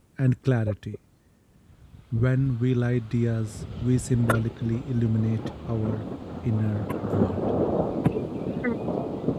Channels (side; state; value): both; identical; correlation 1.00